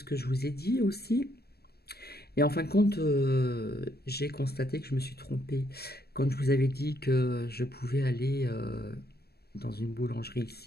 que je vous ai dit aussi. Et en fin de compte, j'ai constaté que je me suis trompée. Quand je vous avais dit que je pouvais aller dans une boulangerie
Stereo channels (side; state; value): right; late; 0.46 ms